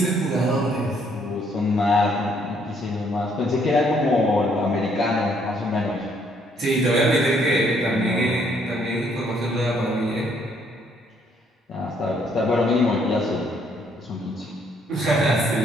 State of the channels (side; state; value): both; normal; correlation 0.68